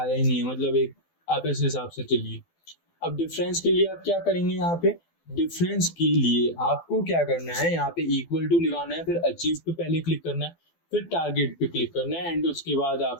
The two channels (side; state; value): right; late; 12 ms